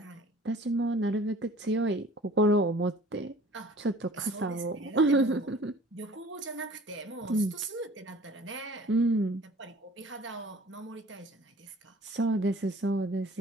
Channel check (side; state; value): both; normal; correlation 0.48